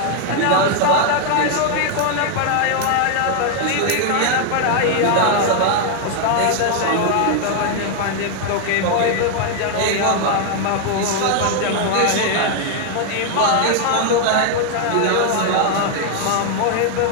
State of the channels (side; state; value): both; different; correlation 0.00